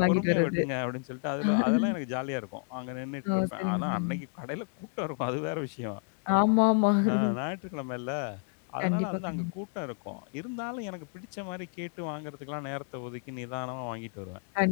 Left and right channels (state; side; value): quieter; right; 39.8 dB